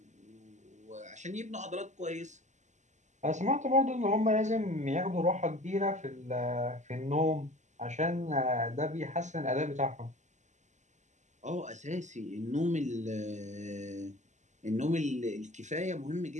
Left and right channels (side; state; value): left; late; 0.34 ms